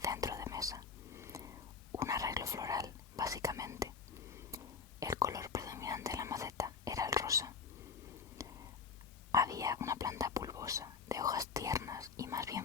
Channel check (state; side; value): quieter; right; 6.0 dB